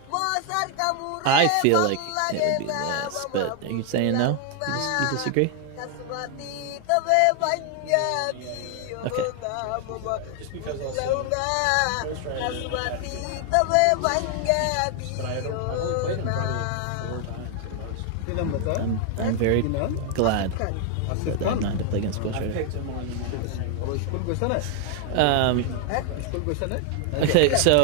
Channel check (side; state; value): both; different; correlation 0.00